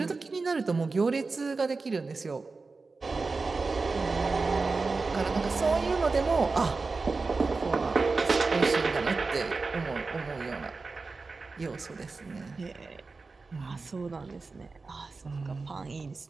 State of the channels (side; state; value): left; quieter; 4.0 dB